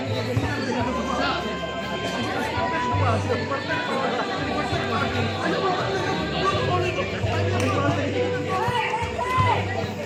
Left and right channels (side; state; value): both; identical; correlation 1.00